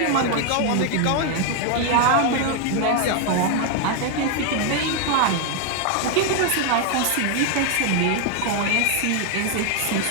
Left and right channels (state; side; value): different; both; correlation 0.01